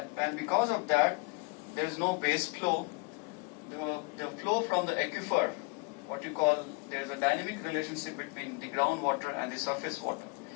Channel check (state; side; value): quieter; right; 29.1 dB